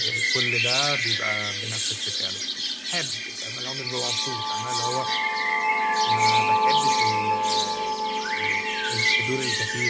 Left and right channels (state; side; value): identical; both; correlation 1.00